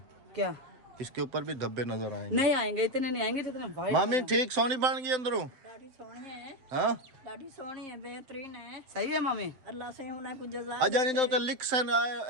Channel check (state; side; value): late; left; 7.7 ms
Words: क्या इसके ऊपर भी धब्बे नजर आएंगे। नहीं आएंगे, इतने नहीं आएंगे जितने वाइट। मामी ठीक सोनी बन गई अंदरों। लाड़ी सोनी है, हाँ लाड़ी सोनी है, बेहतरीन है। सही है मम्मी। अल्लाह से उन्हें कुछ जज़ा अजा नहीं तो लिख सन